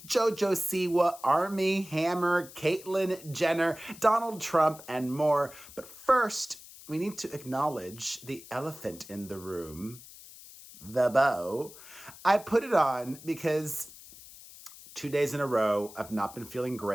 JoJo Siwa, Armie, Hammer, Caitlyn Jenner, Donald Trump, and more. But first, we need to acknowledge the elephant in the room. The bow. I put it on because 2 days in a row, I've not been feeling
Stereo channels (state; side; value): noise; left; hiss, 18 dB below the sound